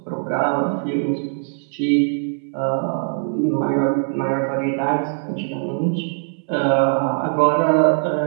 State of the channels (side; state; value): left; silent; 65 dB below the other